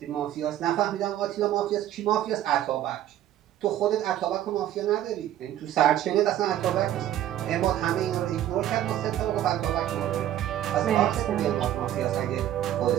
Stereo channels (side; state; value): left; quieter; 12.1 dB